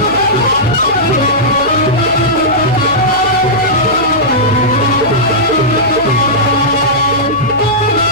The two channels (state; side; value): noise; left; hum, 18 dB below the sound